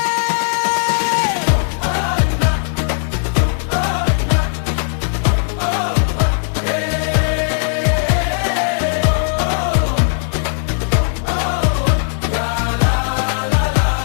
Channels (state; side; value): silent; right; 67 dB below the other